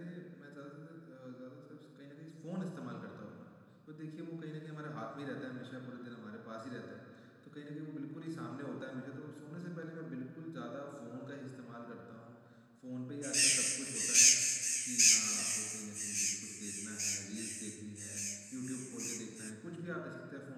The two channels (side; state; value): both; identical; correlation 1.00